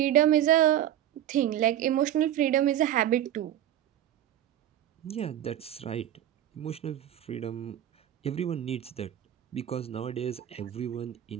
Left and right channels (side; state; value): left; quieter; 11.6 dB